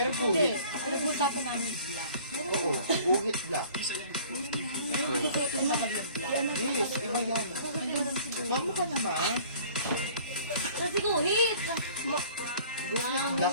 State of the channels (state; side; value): inverted; both; correlation -0.50